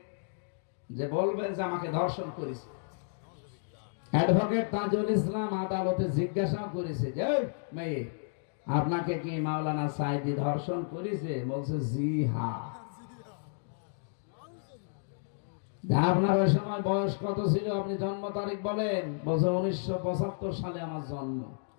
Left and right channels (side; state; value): right; silent; digital silence